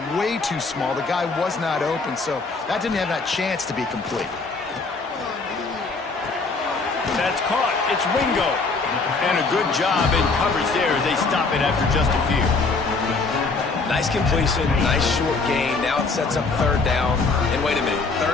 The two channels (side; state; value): right; quieter; 4.1 dB